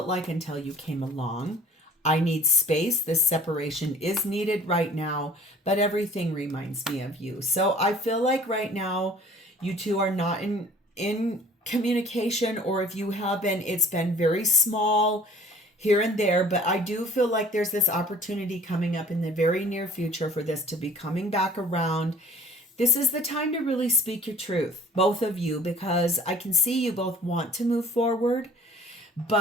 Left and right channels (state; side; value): normal; both; correlation 0.50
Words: like until you came along. I need space. This separation is needed right now, but everything reminds me of you. So I feel like right now you two are not in communication, or if you have been, it's been very small here and there. But I do feel like there's this opportunity coming up in the very near future for this to be coming back around. This is the time to really speak your truth, both of you, because I can see you both want to move forward,